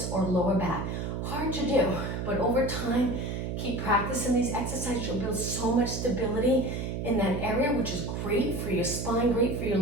or lower back. Hard to do, but over time, keep practicing these exercises. You'll build so much stability in that area, which is great for your spine, great for your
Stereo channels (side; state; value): right; noise; hum, 3 dB below the sound